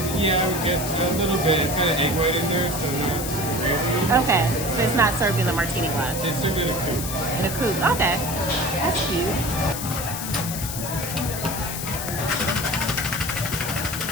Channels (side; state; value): left; noise; hiss, 6 dB below the sound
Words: Yeah, I would guess a little bit. It's got an egg white in there, so not crazy. Okay, so it's not served in a martini glass. It's served in a coupe. In a coupe. Okay, that's cute.